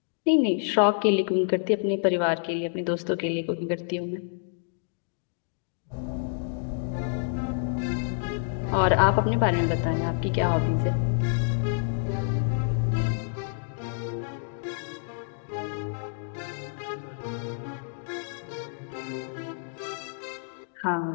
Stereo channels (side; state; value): right; silent; digital silence